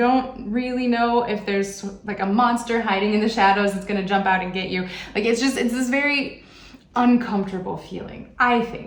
really know if there's like a monster hiding in the shadows that's gonna jump out and get you. Like it's this very uncomfortable feeling, I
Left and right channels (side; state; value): both; identical; correlation 1.00